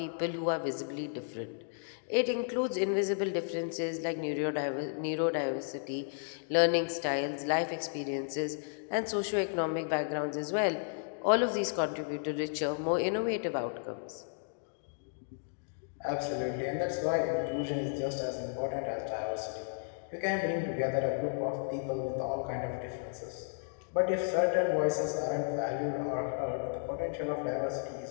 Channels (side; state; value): right; silent; digital silence